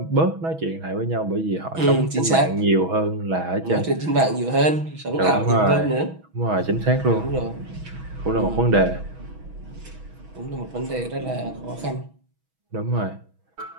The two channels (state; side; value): late; left; 6.2 ms